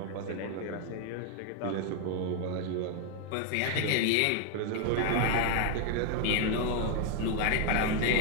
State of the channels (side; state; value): both; different; correlation 0.00